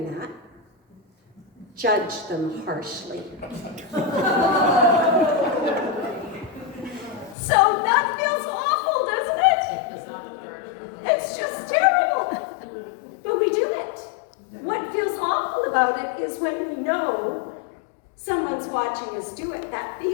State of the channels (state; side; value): drops out; right; at 7.4 s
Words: that, judge them harshly. So that feels awful, doesn't it? It's just terrible. But we do it. What feels awful about it is when we know someone's watching us do it, that